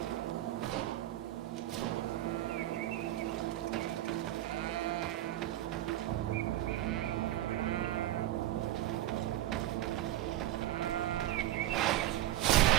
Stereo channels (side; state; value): left; quieter; 14.1 dB